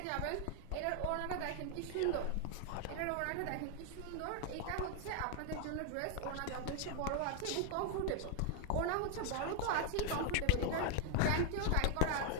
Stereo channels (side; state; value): both; different; correlation 0.00